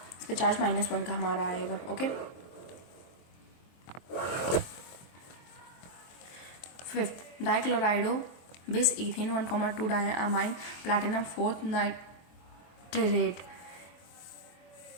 इसका चार्ज -1 का हमारा आएगा, ओके। फिफ्थ डाइक्लोराइडो बिस ethane 1,2 diamine platinum fourth nitrate,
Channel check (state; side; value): late; right; 23 ms